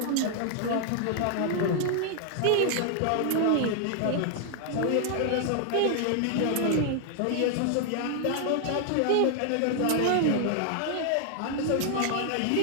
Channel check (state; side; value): different; both; correlation 0.00